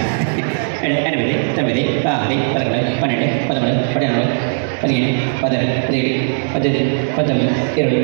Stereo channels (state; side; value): silent; left; digital silence